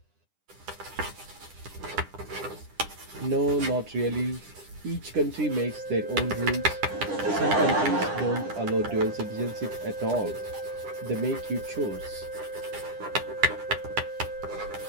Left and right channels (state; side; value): late; left; 10 ms